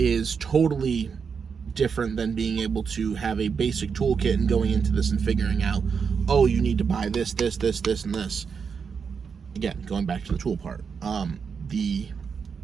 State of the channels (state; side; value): quieter; left; 6.1 dB